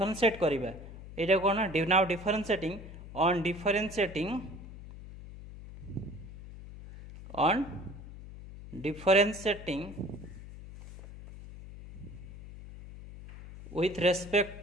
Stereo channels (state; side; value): noise; left; hum, 14 dB below the sound